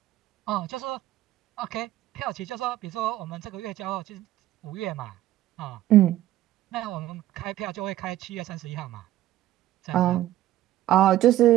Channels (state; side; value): quieter; left; 14.1 dB